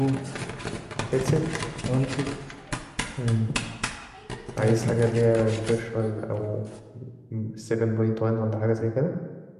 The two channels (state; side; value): identical; both; correlation 1.00